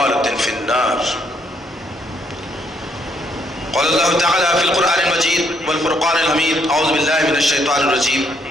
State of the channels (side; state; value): both; normal; correlation 0.71